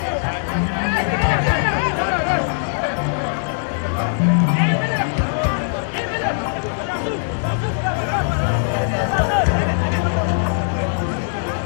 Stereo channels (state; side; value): silent; right; 66 dB below the other